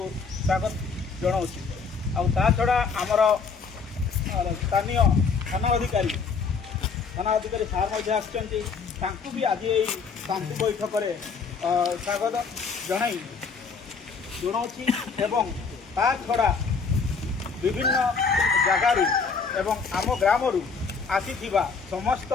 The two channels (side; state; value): right; quieter; 5.2 dB